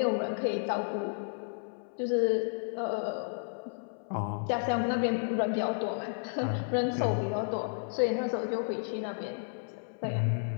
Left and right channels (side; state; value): right; silent; 56 dB below the other